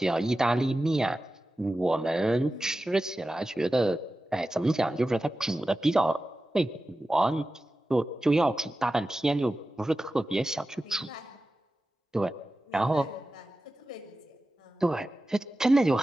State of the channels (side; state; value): both; normal; correlation 0.94